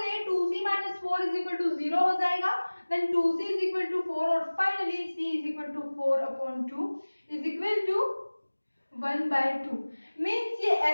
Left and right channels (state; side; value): inverted; both; correlation -1.00